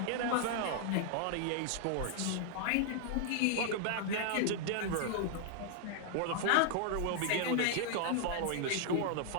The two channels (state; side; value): different; both; correlation 0.00